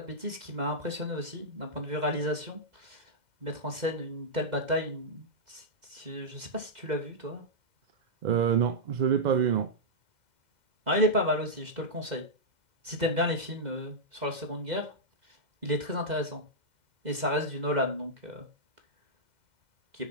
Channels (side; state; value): left; late; 2.0 ms